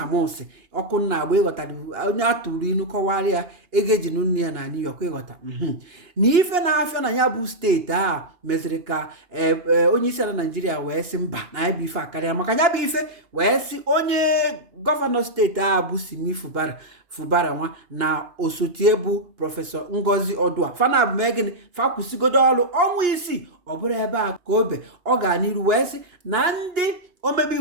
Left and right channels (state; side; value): late; left; 2.8 ms